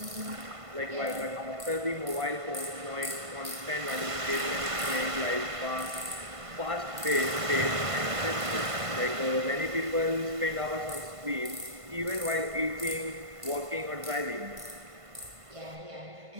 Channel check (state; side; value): late; left; 1.5 ms